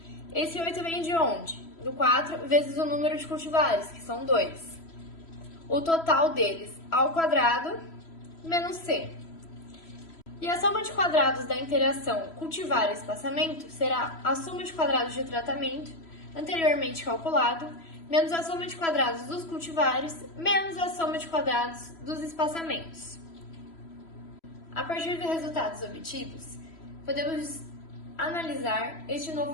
Esse 8 vem de onde? Do 4 vezes o número de cultivares, que são 2. O total deles ao quadrado, menos C. E a soma de quadrados da interação cultivar e espaçamento será a soma de quadrados de tratamento, anteriormente calculado, menos a soma de quadrados dos cultivares, menos a soma de quadrados dos espaçamentos. A partir dos resultados obtidos, podemos analisar este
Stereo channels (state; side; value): late; right; 3.0 ms